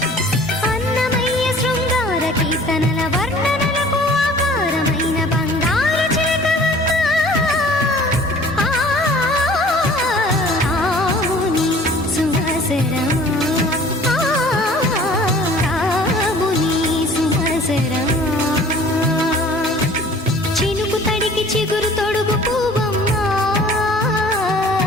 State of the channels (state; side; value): normal; both; correlation 0.49